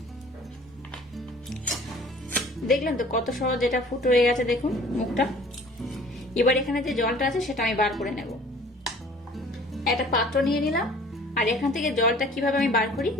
দেখলেন তো কত সহজ, এটা ফুটো হয়ে গেছে, দেখুন মুখটা। এবার এখানে যে জলটা আছে সেটা আমি বার করে নেব। একটা পাত্র নিয়ে নিলাম, আর এখান থেকে জলটা কিভাবে আমি বার করি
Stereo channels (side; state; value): both; normal; correlation 0.50